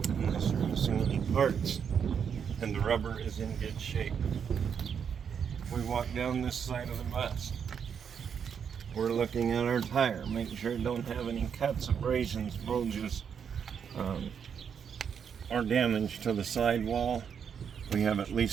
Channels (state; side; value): quieter; left; 7.3 dB